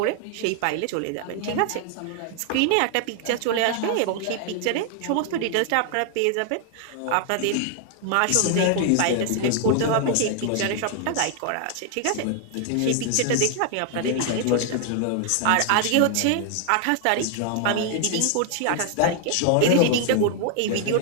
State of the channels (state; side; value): different; both; correlation 0.00